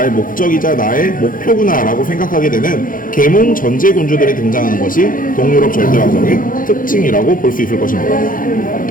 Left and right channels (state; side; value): late; right; 0.40 ms